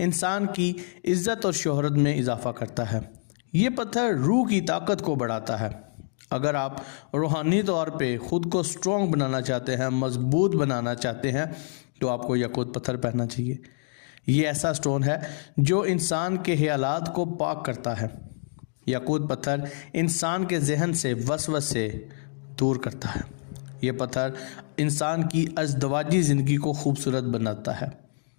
इंसान की इज़्ज़त और शोहरत में इजाफ़ा करता है। ये पत्थर रूह की ताकत को बढ़ाता है। अगर आप रूहानी तौर पे ख़ुद को स्ट्रॉन्ग बनाना चाहते हैं, मज़बूत बनाना चाहते हैं तो आपको याकूत पत्थर पहनना चाहिए। ये ऐसा स्टोन है जो इंसान के ख़यालात को पाक करता है। याकूत पत्थर इंसान के जहन से वसवसे दूर करता है। ये पत्थर इंसान की अज़दवाजी ज़िंदगी को खूबसूरत बनाता है।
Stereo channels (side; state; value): right; silent; digital silence